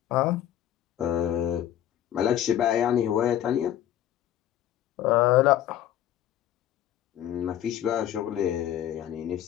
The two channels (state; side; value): quieter; right; 11.5 dB